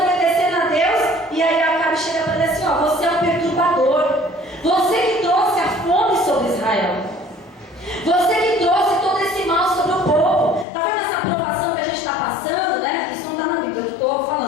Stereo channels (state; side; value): drops out; right; at 10.7 s